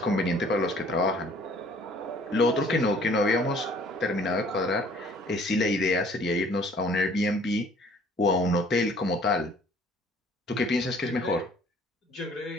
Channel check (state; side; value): normal; both; correlation 0.56